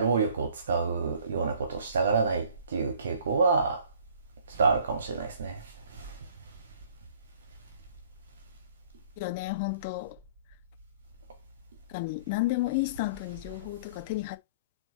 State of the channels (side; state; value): both; inverted; correlation -0.53